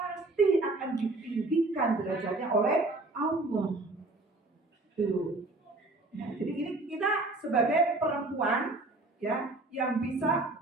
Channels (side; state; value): left; quieter; 3.0 dB